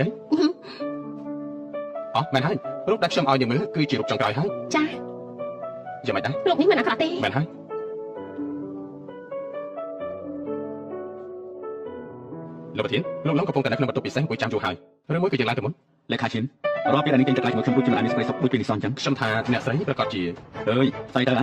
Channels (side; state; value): both; identical; correlation 1.00